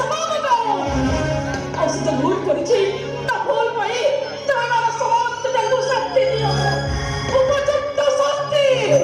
दो और से भूल करिछि ता भूल पई तमरा समस्त जगु शक्ति दियो उपयुक्त शक्ति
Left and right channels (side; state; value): both; identical; correlation 1.00